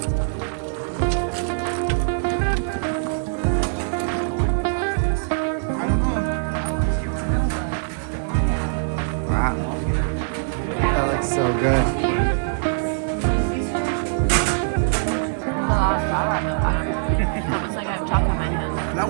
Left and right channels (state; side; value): silent; left; 64 dB below the other